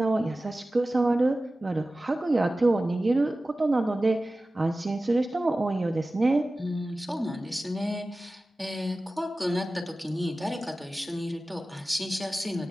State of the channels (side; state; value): both; normal; correlation 0.96